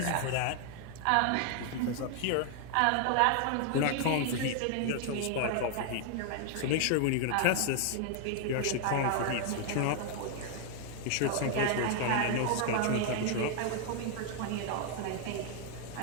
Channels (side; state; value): both; different; correlation 0.00